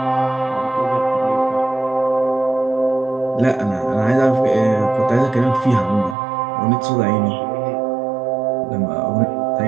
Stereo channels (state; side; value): drops out; left; at 6.2 s